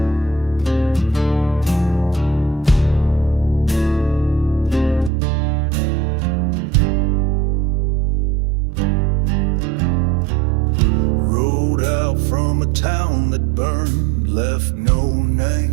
Town that burned, left no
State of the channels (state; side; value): drops out; left; at 5.1 s